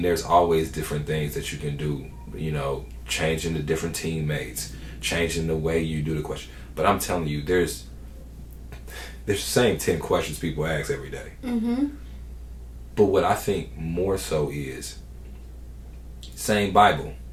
there's always different things that you can do, you know, changing the different teammates, changing the way you do the question. But I'm telling you, there's the same 10 questions people ask every day. Mm-hmm. But what I think more so is, same Bible,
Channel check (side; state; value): both; identical; correlation 1.00